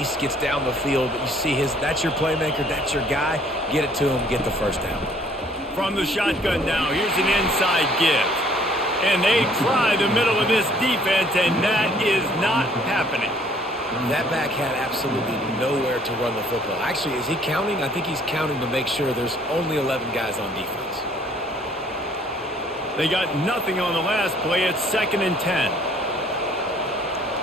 gets down the field. But you see that's your playmaker, that's your guy. Get it to him, get the first down. From the shotgun now, here's an inside give. And they try the middle of this defense, and that is not happening. That back had absolutely nowhere to run the football. Actually, is he counting? I think he's counting to make sure there's only 11 guys on defense. They got nothing on the last play. It's 2nd and 10.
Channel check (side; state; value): both; normal; correlation 0.60